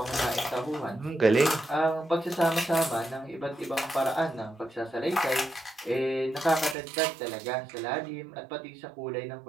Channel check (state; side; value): drops out; left; at 6.8 s